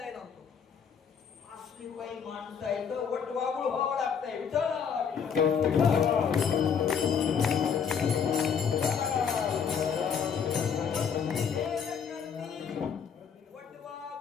नव्हतो. असली काही माणसं आहे तर वटवागुळ व्हावं लागतंय.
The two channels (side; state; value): right; quieter; 6.9 dB